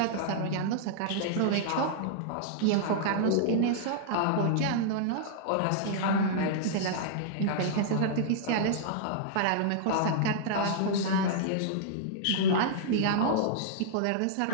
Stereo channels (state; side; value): different; both; correlation -0.02